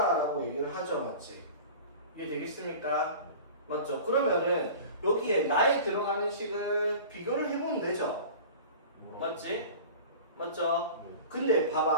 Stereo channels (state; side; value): inverted; both; correlation -0.38